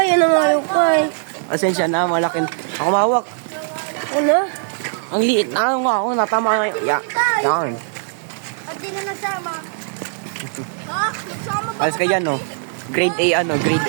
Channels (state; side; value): silent; left; 60 dB below the other